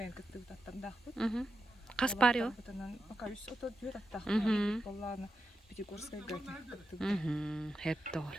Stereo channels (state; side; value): normal; both; correlation 0.89